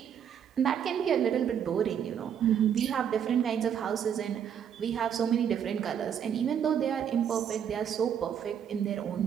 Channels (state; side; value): quieter; left; 8.6 dB